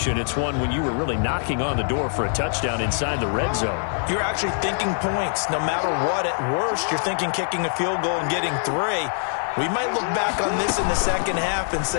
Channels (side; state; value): right; silent; 56 dB below the other